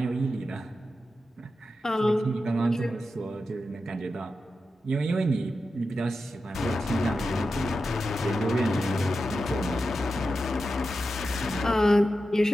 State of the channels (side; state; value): both; normal; correlation 0.91